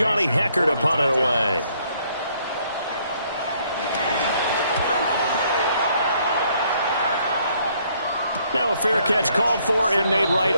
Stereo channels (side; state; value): both; inverted; correlation -0.67